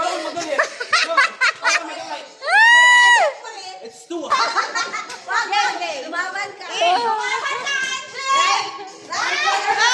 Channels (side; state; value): both; identical; correlation 1.00